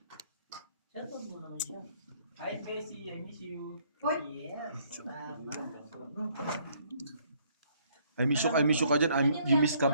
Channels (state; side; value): inverted; both; correlation -0.65